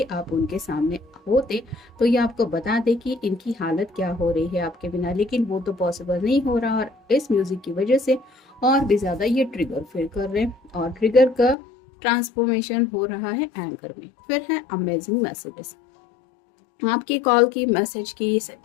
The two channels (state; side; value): drops out; right; at 11.6 s